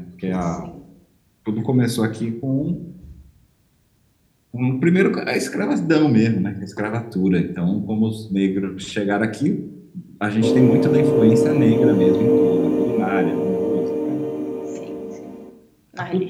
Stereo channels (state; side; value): identical; both; correlation 1.00